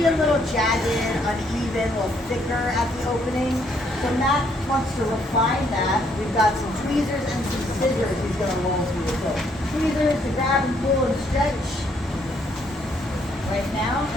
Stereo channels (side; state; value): both; normal; correlation 0.70